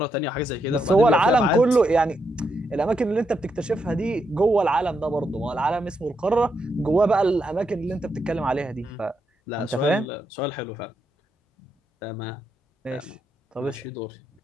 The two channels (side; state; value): both; normal; correlation 0.81